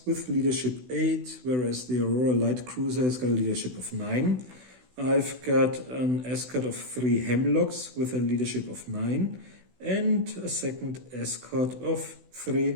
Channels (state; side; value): late; left; 16 ms